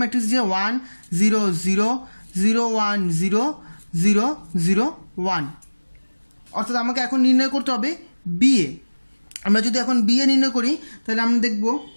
যে 1 0 0 0 1 0 0 0 1, অর্থাৎ আমাকে এখন নির্ণয় করতে হবে বিএ। আমরা যদি এখন বিএ নির্ণয় করি তাহলে আমরা দেখব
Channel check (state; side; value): inverted; both; correlation -1.00